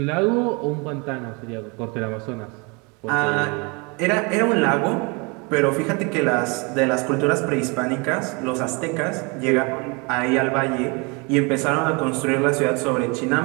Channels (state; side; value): quieter; left; 30.0 dB